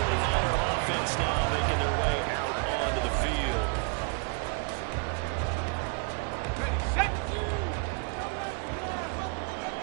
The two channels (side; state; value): left; quieter; 39.8 dB